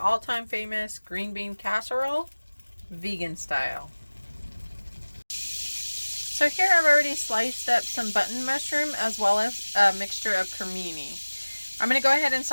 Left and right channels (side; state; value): both; inverted; correlation -1.00